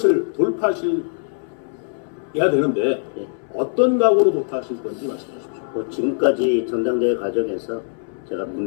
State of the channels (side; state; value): right; silent; 64 dB below the other